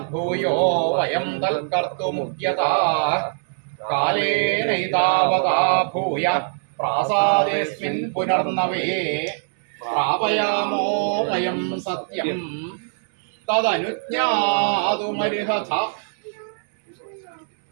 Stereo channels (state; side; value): silent; left; 64 dB below the other